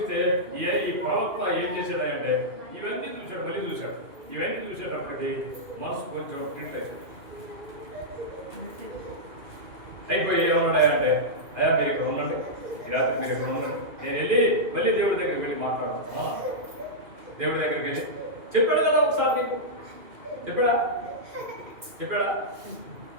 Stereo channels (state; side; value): late; left; 2.4 ms